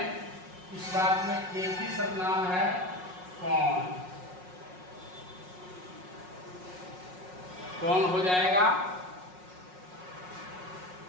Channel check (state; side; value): late; left; 5.5 ms